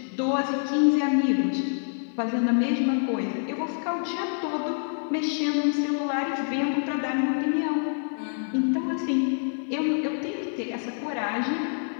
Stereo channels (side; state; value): right; silent; digital silence